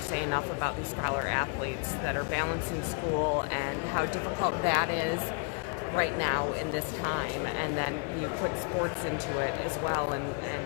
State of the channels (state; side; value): quieter; right; 36.5 dB